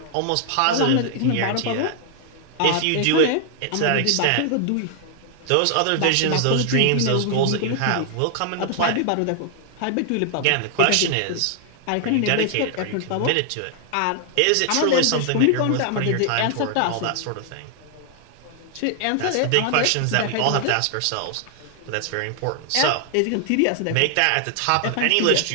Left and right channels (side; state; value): both; different; correlation 0.00